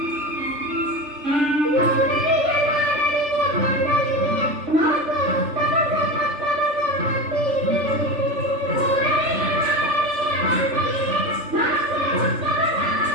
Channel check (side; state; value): left; late; 3.4 ms